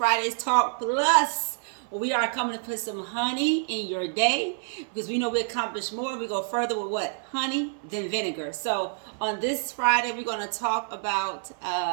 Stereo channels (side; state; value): left; silent; 60 dB below the other